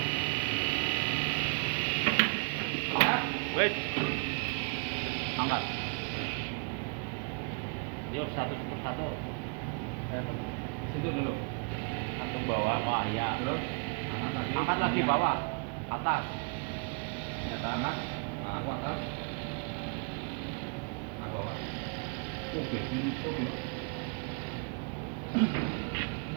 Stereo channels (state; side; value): quieter; left; 36.9 dB